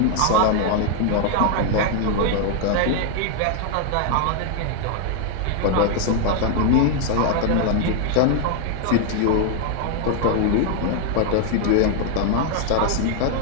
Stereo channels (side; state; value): both; different; correlation 0.00